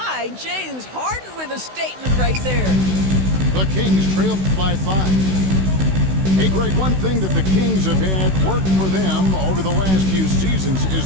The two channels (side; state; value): left; late; 16 ms